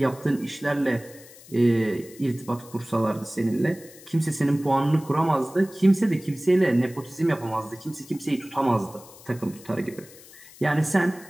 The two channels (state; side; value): noise; left; hiss, 21 dB below the sound